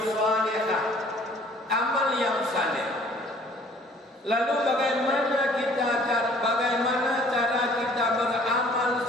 salihah, amal yang saleh. Lalu bagaimana cara kita beramal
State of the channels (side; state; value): both; normal; correlation 0.55